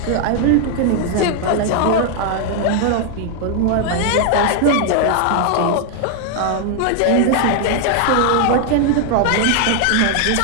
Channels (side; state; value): both; different; correlation 0.00